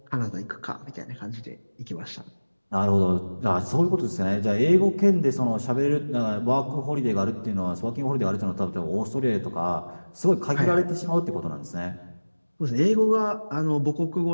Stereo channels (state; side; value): inverted; both; correlation -1.00